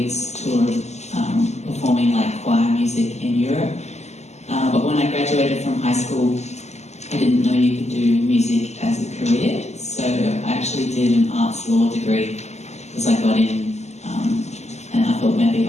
tour performing like choir music in Europe. But when I graduated from high school, I didn't know you could do music as a career, so I actually did an arts law degree because I got in, and I thought maybe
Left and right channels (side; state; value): right; late; 0.33 ms